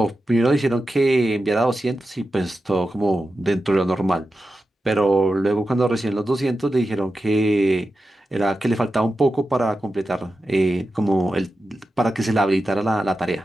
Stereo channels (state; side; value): normal; both; correlation 0.91